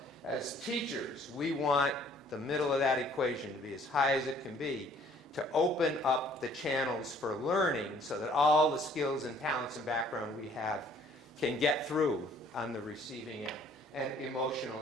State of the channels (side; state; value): both; normal; correlation 0.58